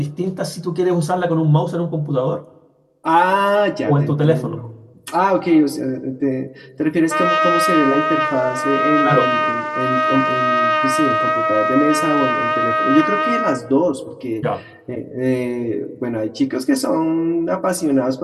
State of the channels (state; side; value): identical; both; correlation 1.00